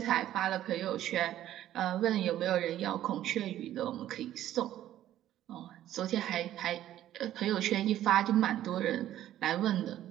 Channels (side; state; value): left; quieter; 12.6 dB